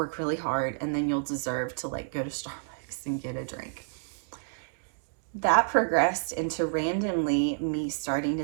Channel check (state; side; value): silent; left; digital silence